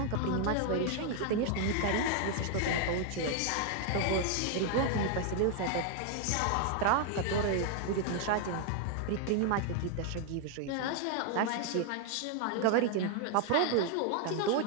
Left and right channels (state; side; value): different; both; correlation 0.00